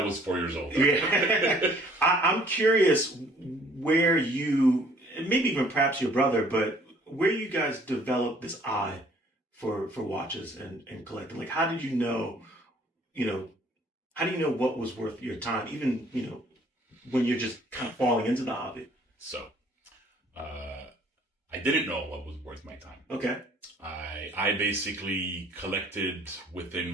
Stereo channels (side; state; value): both; normal; correlation 0.58